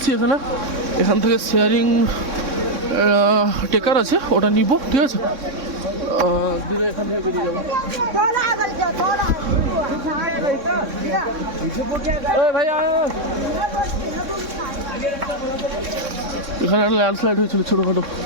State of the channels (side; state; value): left; late; 3.6 ms